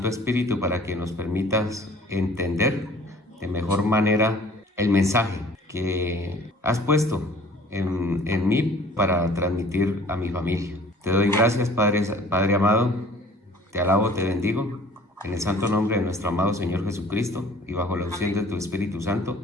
Espíritu para que nos permitas entender de mejor manera el mensaje que has puesto en mí para transmitir a mi familia. Te doy gracias, Padre amado, te alabo, te bendigo, en el santo nombre de nuestro amado Señor Jesucristo y bajo la unción de tu Espíritu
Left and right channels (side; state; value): both; normal; correlation 0.50